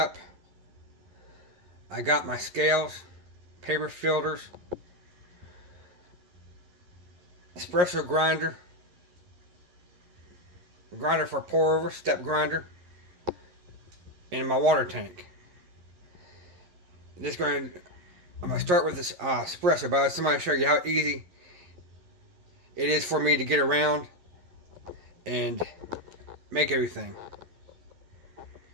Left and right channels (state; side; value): late; left; 11 ms